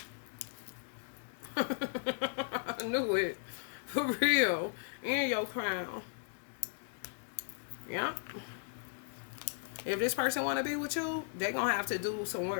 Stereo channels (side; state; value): right; silent; digital silence